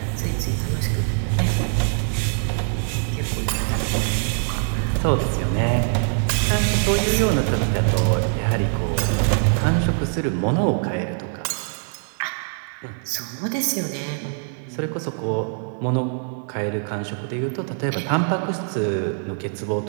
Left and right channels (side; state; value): left; silent; 63 dB below the other